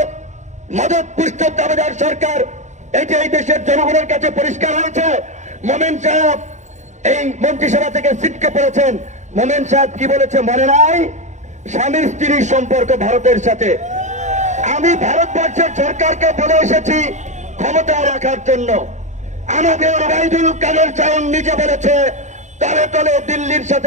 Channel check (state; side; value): late; left; 0.34 ms